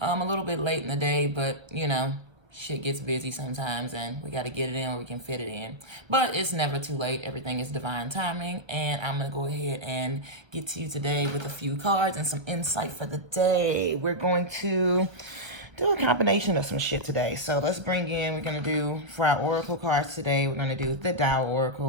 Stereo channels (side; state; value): left; late; 1.1 ms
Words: little bit late in the day, but shit gets busy sometimes and we got to get it in where we can fit it in. But it's never too late. Everything is divine timing. And I'm going to go ahead and get to you today with a few cards and some insight for the day. We're going to do a combination of some shit today. So let's bring in, we're going to do, for our oracle cards today, we're going to do the Tao